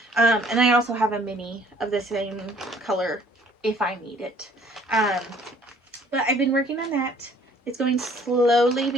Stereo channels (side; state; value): both; normal; correlation 0.57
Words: And I also have a mini of the same color if I need it. But I've been working on that. It's going slowly